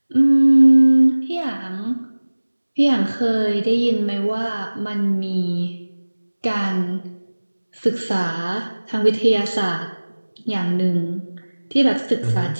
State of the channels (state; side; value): inverted; both; correlation -1.00